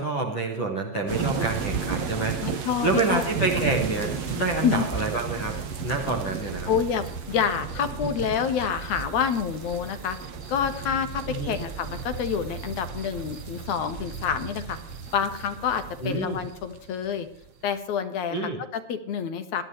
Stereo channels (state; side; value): late; right; 9.8 ms